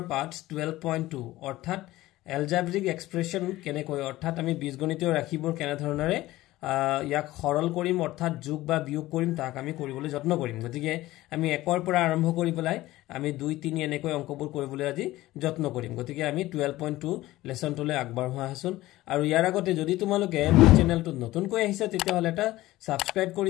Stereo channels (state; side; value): quieter; right; 17.0 dB